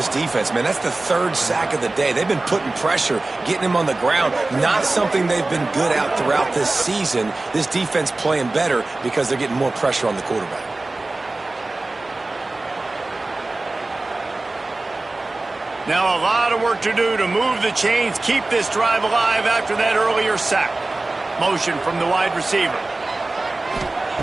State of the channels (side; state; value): left; quieter; 3.1 dB